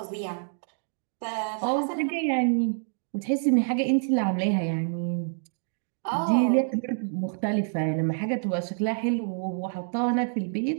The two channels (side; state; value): left; silent; digital silence